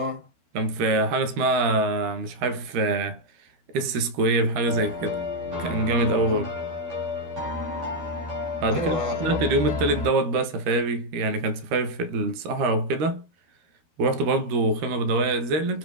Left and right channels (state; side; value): late; left; 13 ms